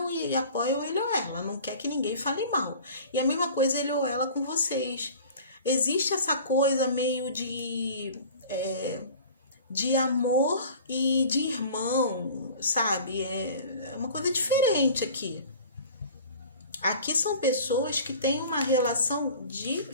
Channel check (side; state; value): both; inverted; correlation -0.43